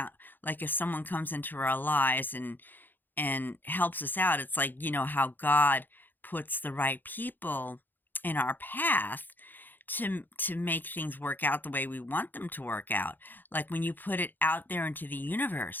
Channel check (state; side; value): late; right; 0.089 ms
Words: like, if someone comes into our lives and helps us out. It's like, how God puts the right people in our path to make things work out the way we want them to work out. Like when you put it out there into the